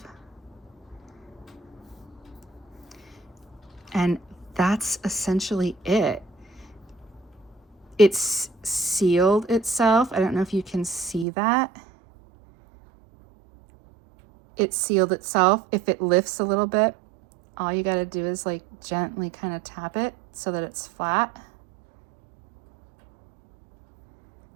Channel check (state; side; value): drops out; left; at 11.2 s